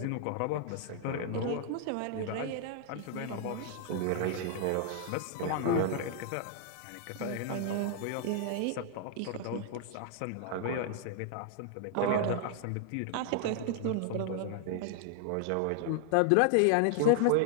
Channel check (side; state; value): both; different; correlation 0.00